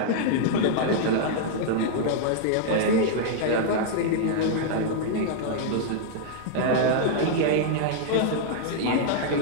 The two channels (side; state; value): both; different; correlation -0.01